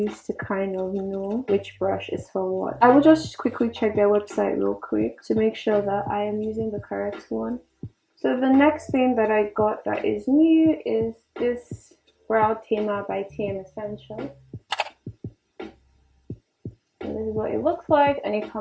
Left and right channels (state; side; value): identical; both; correlation 1.00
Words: to kind of know which brush is for what. I will just quickly check their website real quick to make sure that I am using the correct one. So the next thing that I got that is new is this Brow Tamer by TM Essentials. And this is what it looks like, and it